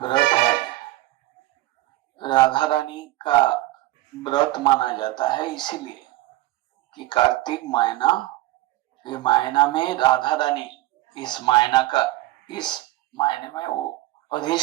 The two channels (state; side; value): quieter; left; 17.3 dB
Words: व्रत है। राधा रानी का व्रत माना जाता है इसीलिए कि कार्तिक महीना, ये महीना में राधा रानी इस महीने में वो